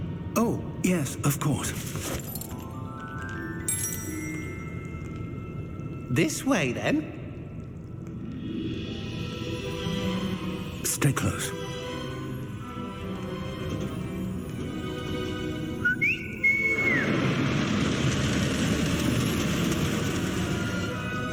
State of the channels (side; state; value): both; identical; correlation 1.00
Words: Oh, yes, of course. This way, then. Stay close.